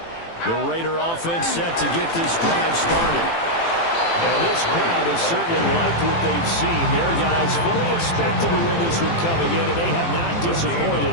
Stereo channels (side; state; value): right; late; 18 ms